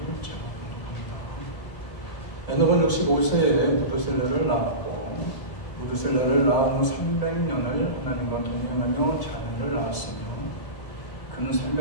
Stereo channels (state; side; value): late; right; 1.7 ms